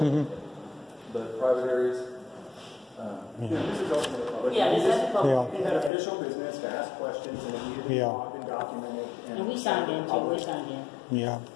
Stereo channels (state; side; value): drops out; right; at 5.9 s